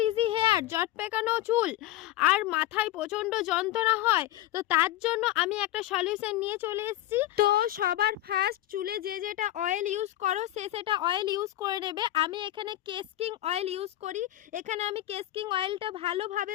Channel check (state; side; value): quieter; right; 14.9 dB